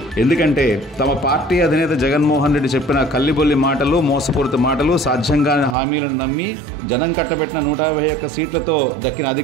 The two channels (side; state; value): left; drops out; at 5.8 s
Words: ఎందుకంటే తమ పార్టీ అధినేత జగన్మోహన్ రెడ్డి చెప్పిన కల్లిబొల్లి మాటలు, మోసపూరిత మాటలు, సాధ్యంగాని హామీలను నమ్మి జనం కట్టబెట్టిన 151 సీట్లతో దక్కిన